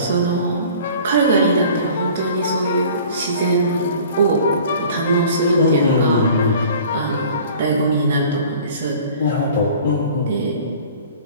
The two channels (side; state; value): both; inverted; correlation -0.47